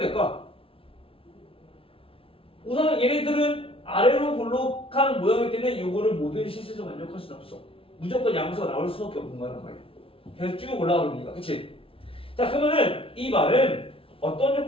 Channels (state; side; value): late; right; 0.26 ms